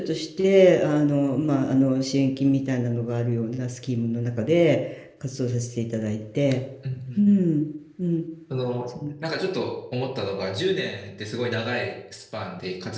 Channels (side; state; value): both; identical; correlation 1.00